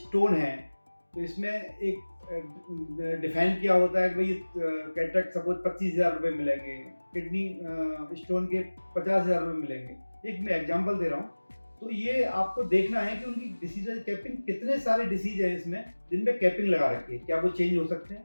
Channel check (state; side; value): inverted; both; correlation -1.00